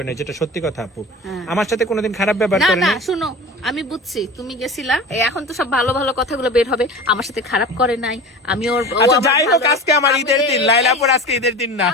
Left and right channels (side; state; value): both; normal; correlation 0.34